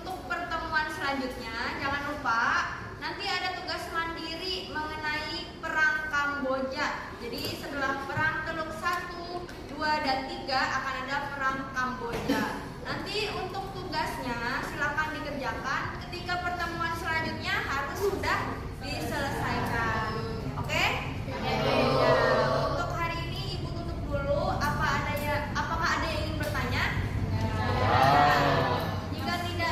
pertemuan selanjutnya jangan lupa nanti ada tugas mandiri mengenai perang Kamboja. Jadi setelah perang Teluk 1, 2, dan 3 akan ada perang Kamboja. Nanti untuk tugasnya silakan dikerjakan, ketika pertemuan selanjutnya harus sudah diselesaikan.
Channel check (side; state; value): both; identical; correlation 1.00